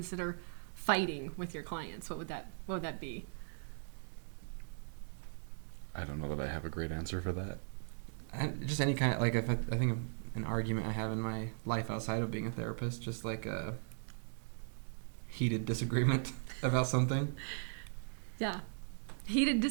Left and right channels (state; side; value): silent; left; digital silence